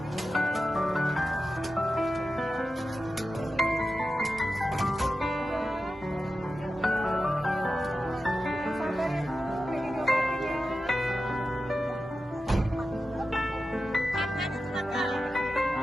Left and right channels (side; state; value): both; normal; correlation 0.92